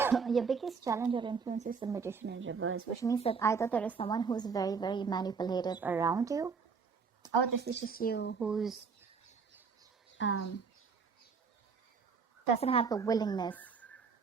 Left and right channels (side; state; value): left; quieter; 5.5 dB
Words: Your biggest challenge or influence is the Magician in reverse, which means that either there is someone who's very, very manipulative around you, or this is just you who's doesn't have the willingness,